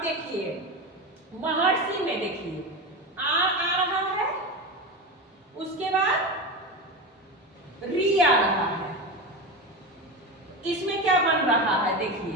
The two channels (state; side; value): normal; both; correlation 0.21